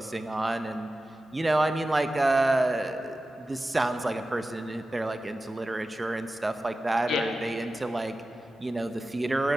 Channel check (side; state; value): both; normal; correlation 0.94